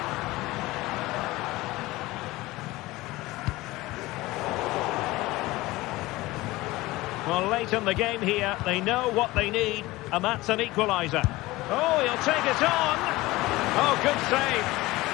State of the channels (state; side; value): quieter; right; 19.5 dB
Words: Well, late in the game here, they know what they need, and that's an equaliser. Oh, he'll take it on. Oh, good save.